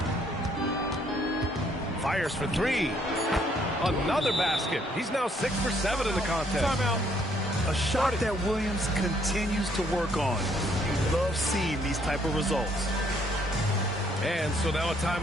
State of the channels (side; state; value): both; normal; correlation 0.67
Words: Fires for 3. Another basket. He's now 6 for 7 in the contest. Timeout. A shot that Williams continues to work on. You love seeing these type of results. And so now a